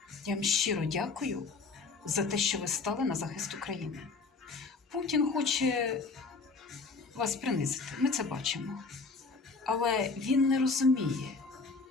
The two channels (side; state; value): right; quieter; 4.2 dB